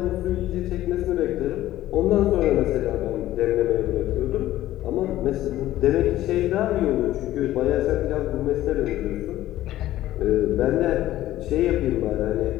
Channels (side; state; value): right; quieter; 14.4 dB